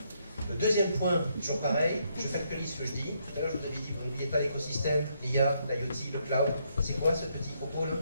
Le deuxième point, toujours pareil, je factualise ce que je dis. Tout à l'heure, je vous avais dit, vous n'oubliez pas l'écosystème, l'IA, l'IoT, le cloud. C'est quoi ce petit propos là?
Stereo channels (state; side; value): inverted; both; correlation -0.75